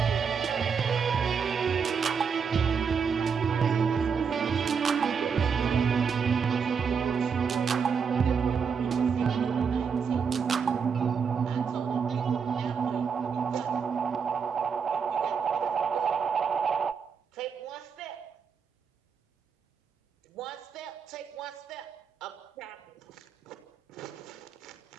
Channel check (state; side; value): quieter; left; 6.3 dB